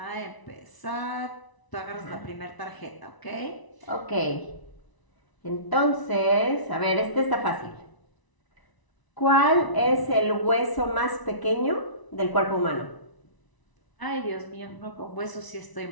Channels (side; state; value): right; late; 1.0 ms